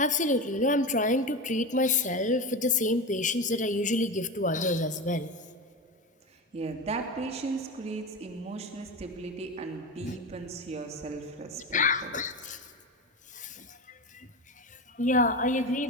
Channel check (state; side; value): normal; both; correlation 0.22